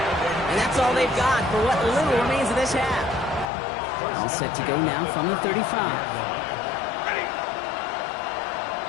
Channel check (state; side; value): drops out; right; at 3.5 s